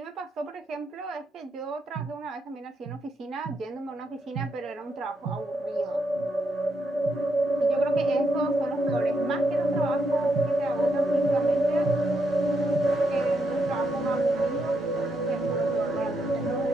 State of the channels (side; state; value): both; normal; correlation 0.80